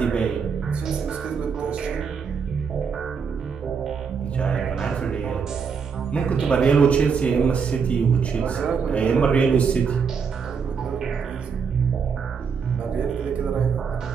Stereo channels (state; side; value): quieter; left; 6.1 dB